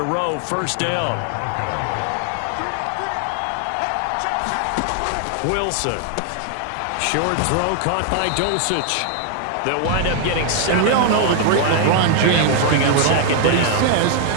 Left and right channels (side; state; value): both; different; correlation 0.00